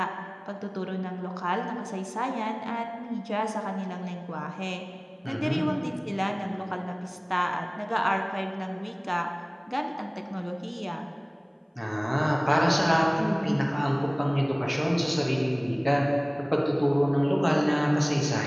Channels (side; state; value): both; identical; correlation 1.00